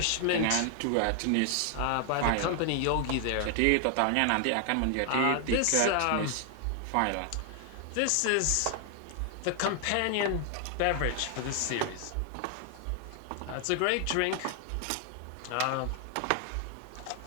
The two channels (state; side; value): different; both; correlation 0.00